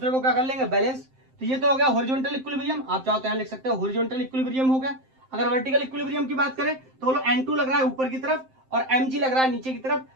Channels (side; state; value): left; late; 7.7 ms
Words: को क्या कर लेंगे, बैलेंस। तो ये तो हो गया हॉरिजॉन्टल इक्विलिब्रियम, आप चाहो तो यहां लिख सकते हो हॉरिजॉन्टल इक्विलिब्रियम हो गया। अगर वर्टिकल इक्विलिब्रियम की बात करें तो बोलो N2 लग रहा है ऊपर की तरफ और mg लग रहा है नीचे की तरफ,